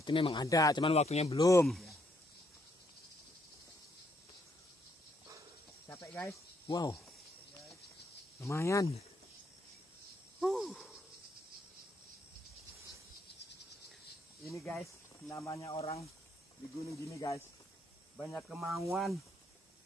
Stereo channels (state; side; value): normal; both; correlation 0.73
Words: memang ada, cuman waktunya belum. Ya. Capek guys. Wow, lumayan. Ini guys, namanya orang di gunung gini guys. Banyak kemauan,